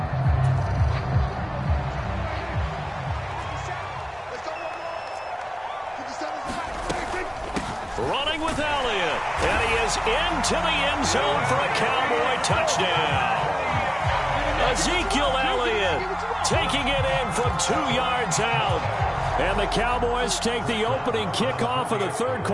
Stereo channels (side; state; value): both; identical; correlation 1.00